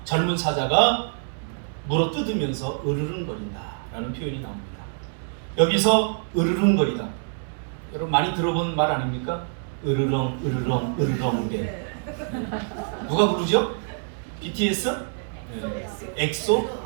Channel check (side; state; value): left; silent; 61 dB below the other